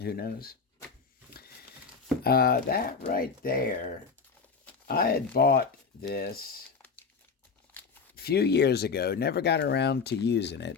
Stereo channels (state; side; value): quieter; right; 5.3 dB